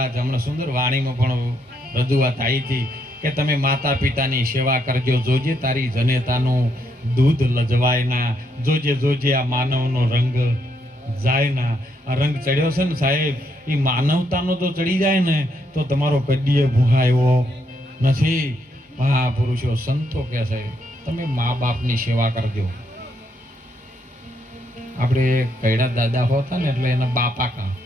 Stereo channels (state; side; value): normal; both; correlation 0.76